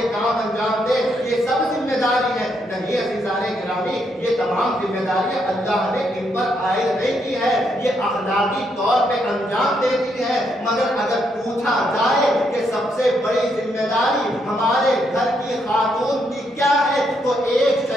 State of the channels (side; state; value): both; normal; correlation 0.76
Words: کام انجام دے، یہ سب ذمہ داری ہے۔ نہیں عزیزان گرامی، یہ تمام ذمہ داریاں اللہ نے ان پر عائد نہیں کی ہے، یہ اخلاقی طور پہ انجام دیتی ہے، مگر اگر پوچھا جائے کہ سب سے بڑی ذمہ داری ہمارے گھر کی خاتون کی کیا ہے، تو ایک